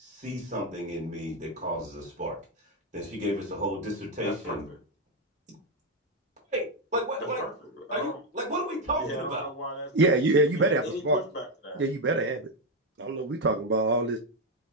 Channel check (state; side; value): normal; both; correlation 0.05